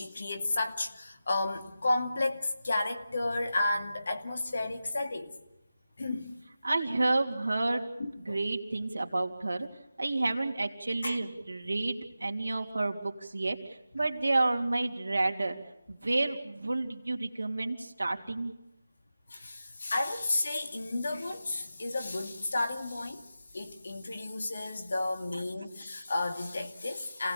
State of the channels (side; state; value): both; inverted; correlation -0.93